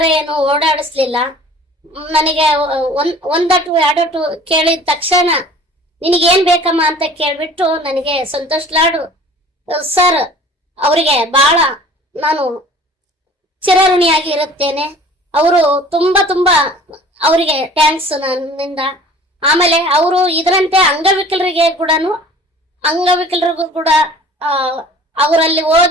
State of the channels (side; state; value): both; normal; correlation 0.47